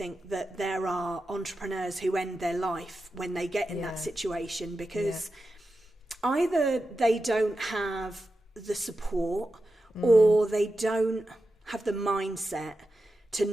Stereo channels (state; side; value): normal; both; correlation 0.91